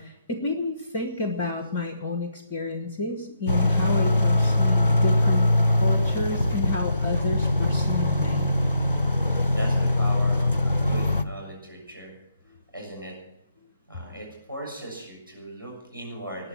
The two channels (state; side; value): inverted; both; correlation -0.80